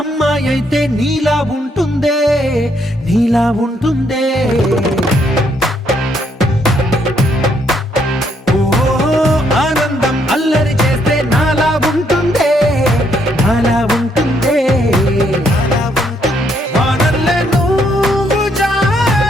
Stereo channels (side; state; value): both; normal; correlation 0.72